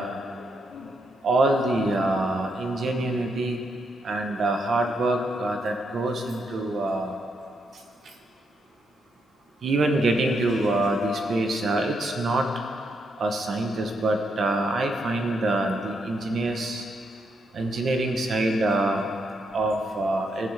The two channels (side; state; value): both; normal; correlation 0.79